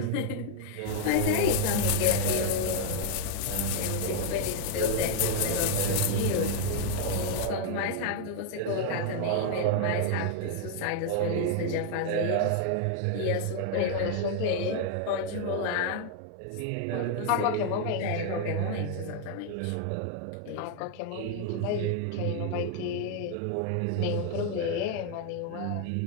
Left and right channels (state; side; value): different; both; correlation 0.00